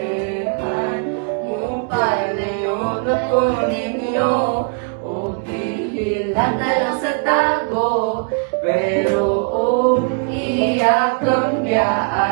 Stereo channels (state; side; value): quieter; left; 35.9 dB